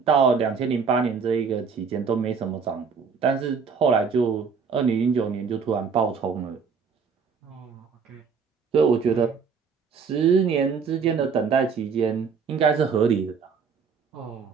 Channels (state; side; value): quieter; left; 5.8 dB